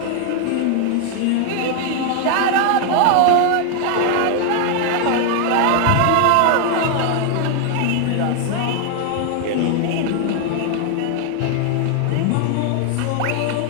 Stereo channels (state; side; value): different; both; correlation 0.00